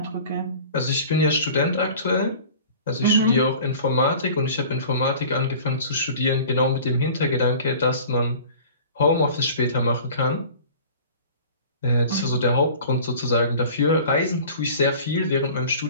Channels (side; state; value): both; inverted; correlation -0.43